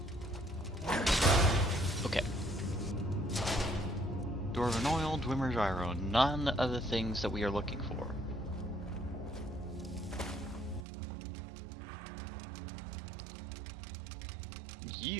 Okay. Dwarven oil, Dwemer gyro, none of the things that we are looking for.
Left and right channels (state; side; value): drops out; left; at 10.9 s